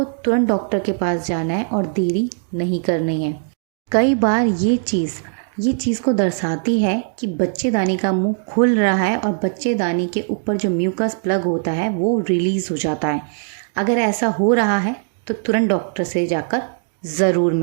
तुरंत डॉक्टर के पास जाना है और देरी नहीं करनी है। कई बार ये चीज़ को दर्शाती है कि बच्चेदानी का मुंह खुल रहा है और बच्चेदानी के ऊपर जो म्यूकस प्लग होता है वो रिलीज़ हो जाता है। अगर ऐसा हो रहा है तो तुरंत डॉक्टर से जाकर ज़रूर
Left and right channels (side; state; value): left; silent; digital silence